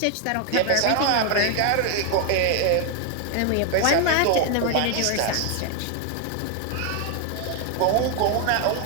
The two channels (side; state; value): both; different; correlation 0.01